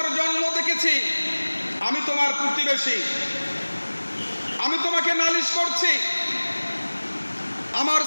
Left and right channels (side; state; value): both; inverted; correlation -1.00